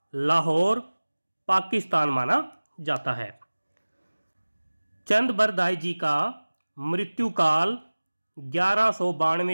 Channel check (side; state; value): both; inverted; correlation -1.00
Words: लाहौर, पाकिस्तान माना जाता है। चंद बरदाई जी का मृत्यु काल